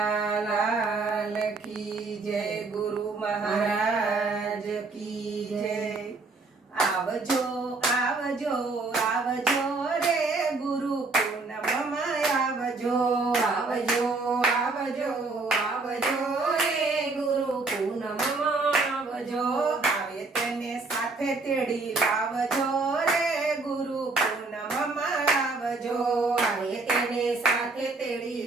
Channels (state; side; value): quieter; left; 3.7 dB